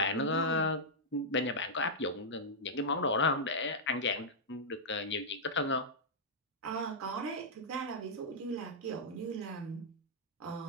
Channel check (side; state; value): both; normal; correlation -0.08